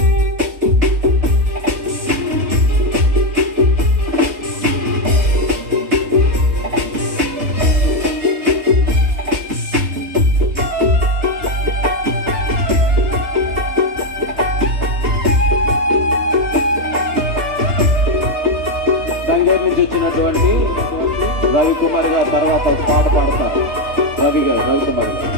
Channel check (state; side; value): late; left; 3.3 ms